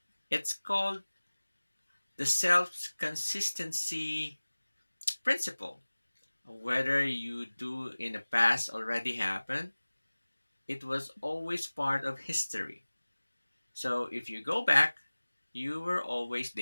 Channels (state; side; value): inverted; both; correlation -1.00